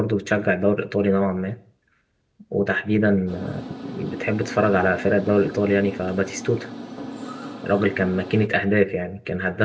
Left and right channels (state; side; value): identical; both; correlation 1.00